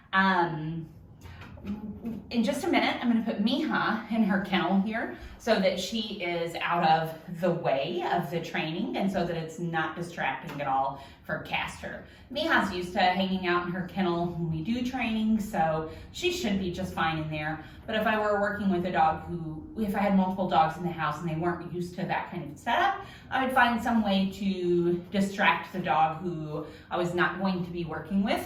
In just a minute, I'm going to put Mija in her kennel here so that she is out of the way of the training and so that it's not distracting at all for Castor. Mija's used to hanging out in her kennel when we do training, so she should be just fine in there. But if I were working with a dog if I had multiple dogs in the house and they weren't used to that kind of setup, I would find some way to distract the dog who I was not going to be working with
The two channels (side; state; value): both; identical; correlation 1.00